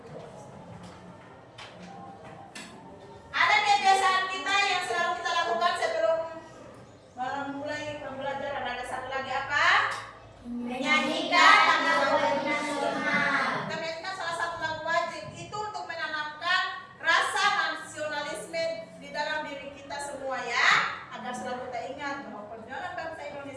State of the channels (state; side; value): identical; both; correlation 1.00